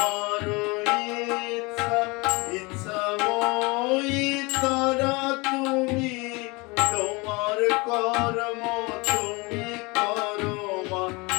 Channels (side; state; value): right; quieter; 26.0 dB